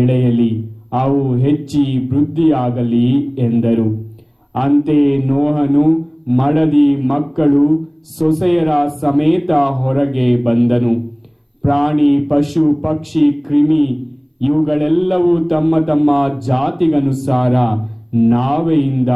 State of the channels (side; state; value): both; identical; correlation 1.00